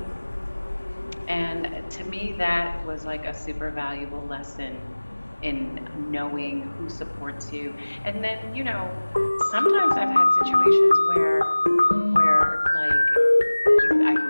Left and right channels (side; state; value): both; inverted; correlation -1.00